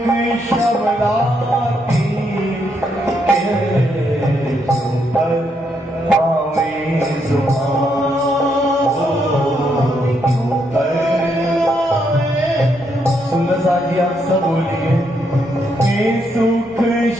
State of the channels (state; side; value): normal; both; correlation 0.77